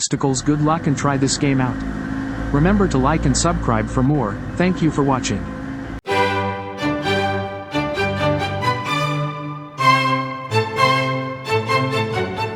Good luck and try this game out. Remember to like and subscribe for more. Thank you for watching.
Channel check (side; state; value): both; identical; correlation 1.00